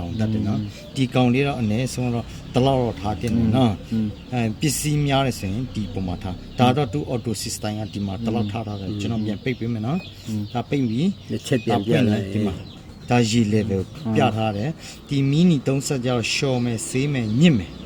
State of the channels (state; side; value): identical; both; correlation 1.00